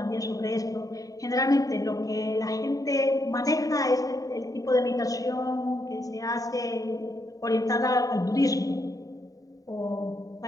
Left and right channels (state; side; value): late; right; 0.17 ms